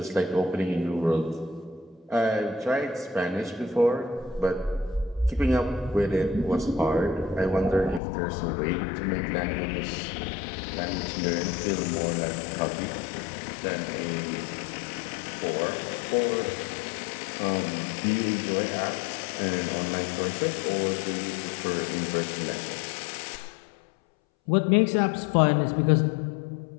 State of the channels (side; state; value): right; drops out; at 8.0 s